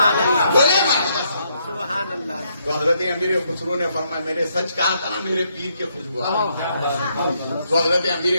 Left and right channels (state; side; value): inverted; both; correlation -0.75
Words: اللہ. بولے سبحان اللہ. تو حضرت امیر خسرو نے فرمایا میں نے سچ کہا تھا نا, میرے پیر کے خوشبو آ رہی ہے. تو حضرت امیر